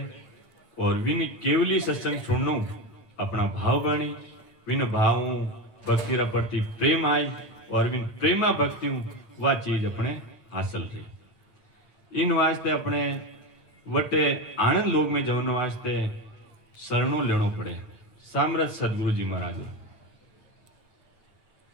और विन केवली सत्संग सुननो अपना भाव बनी, विन भाव भक्ति रा प्रति प्रेम आई और विन प्रेमा भक्ति वह चीज अपने हासिल रही। इन वास्ते अपने वटे आनंद लोक में जवन वास्ते शरणों लेनो पड़े। सामरथ सदगुरु जी महाराज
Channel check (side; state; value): right; late; 9.0 ms